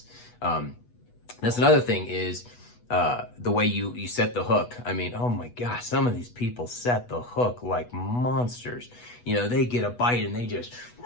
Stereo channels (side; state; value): right; late; 8.2 ms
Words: That's another thing is the way you set the hook. I mean, oh my gosh, some of these people set the hook like monsters. They get a bite and they just,